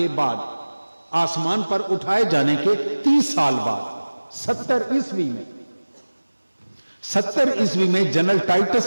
بعد، آسمان پر اٹھائے جانے کے 30 سال بعد 70 عیسوی میں جنرل ٹائٹس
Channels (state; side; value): inverted; both; correlation -1.00